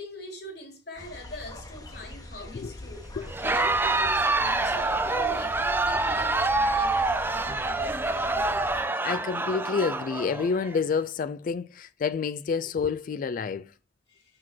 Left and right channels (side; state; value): both; normal; correlation 0.43